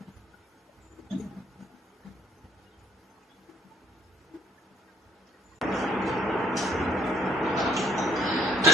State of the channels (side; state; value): both; normal; correlation 0.65